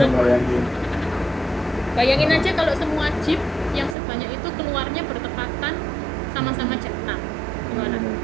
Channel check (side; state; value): left; drops out; at 4.0 s